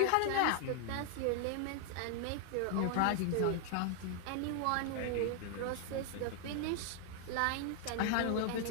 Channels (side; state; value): both; different; correlation 0.00